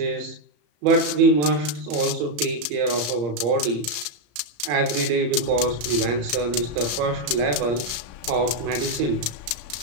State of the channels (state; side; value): late; left; 34 ms